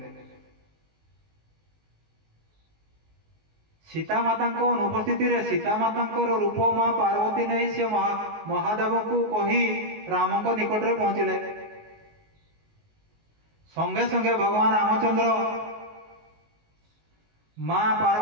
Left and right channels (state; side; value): late; left; 19 ms